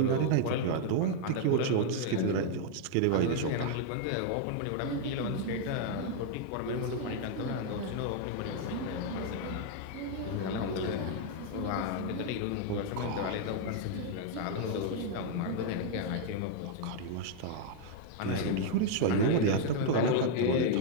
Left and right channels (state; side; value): different; both; correlation 0.00